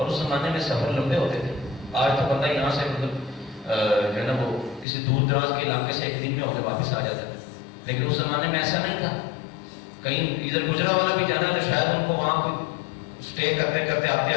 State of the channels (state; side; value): drops out; right; at 4.9 s